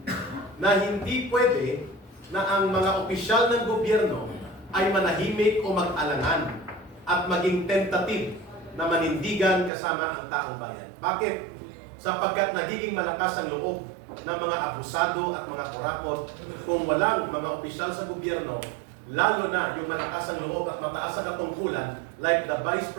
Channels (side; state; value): left; drops out; at 9.7 s